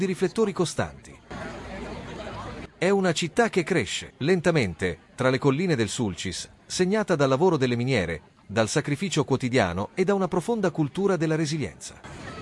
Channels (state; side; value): identical; both; correlation 1.00